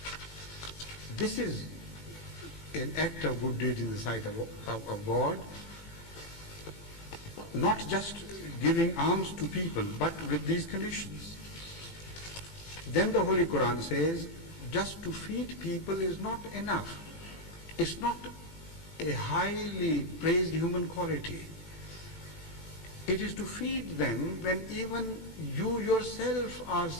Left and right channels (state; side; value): late; right; 18 ms